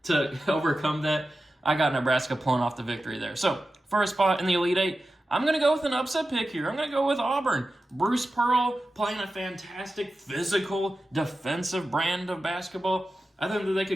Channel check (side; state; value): both; normal; correlation 0.93